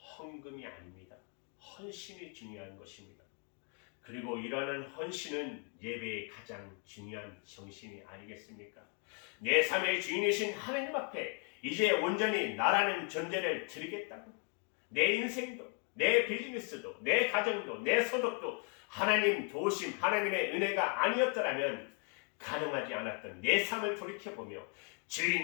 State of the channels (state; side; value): quieter; right; 37.9 dB